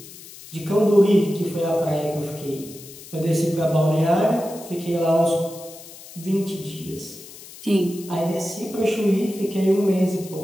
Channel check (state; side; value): noise; left; hiss, 17 dB below the sound